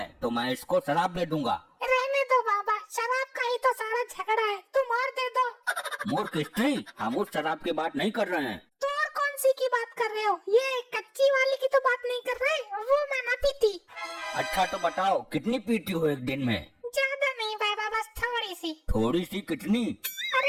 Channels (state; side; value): identical; both; correlation 1.00